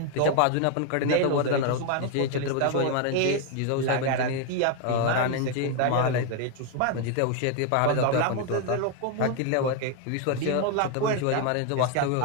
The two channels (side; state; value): both; different; correlation 0.01